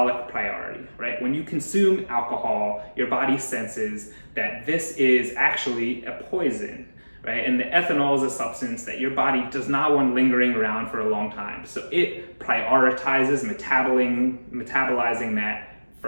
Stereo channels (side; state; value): both; inverted; correlation -1.00